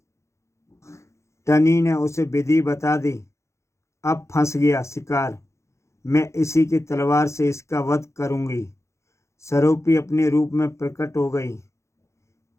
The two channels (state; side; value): late; right; 0.14 ms